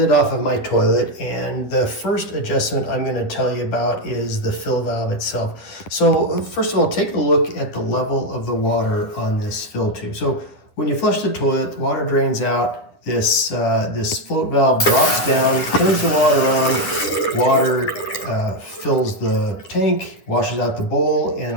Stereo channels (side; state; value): right; late; 9.8 ms